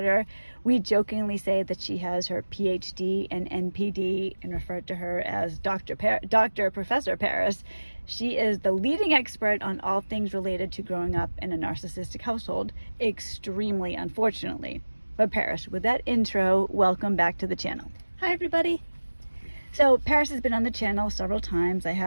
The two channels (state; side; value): inverted; both; correlation -1.00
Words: We jokingly say that she has her PhD and NPD and refer to her as Professor Paris. She is the leading expert on all things related to growing up in a narcissistic household, extremely unfortunately. But Paris, with that intro, welcome back to the channel. Hi everybody. So Paris has been on the channel several times. I